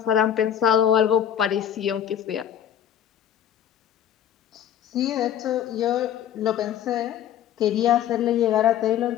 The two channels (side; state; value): right; quieter; 9.9 dB